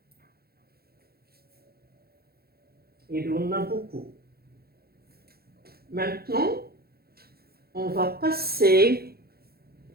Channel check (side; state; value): left; late; 0.45 ms